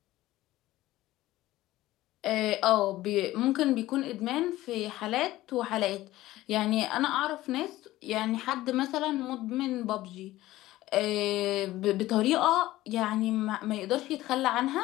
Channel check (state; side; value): quieter; right; 16.4 dB